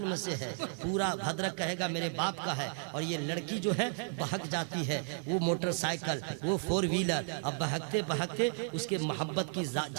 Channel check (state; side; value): silent; left; 55 dB below the other